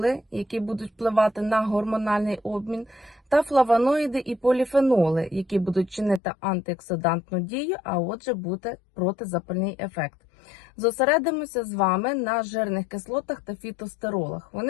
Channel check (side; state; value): right; drops out; at 6.2 s